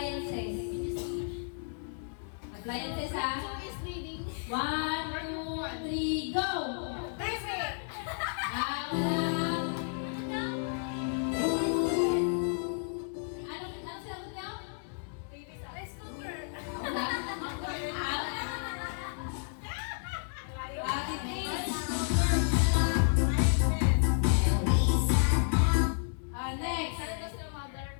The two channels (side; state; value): right; silent; digital silence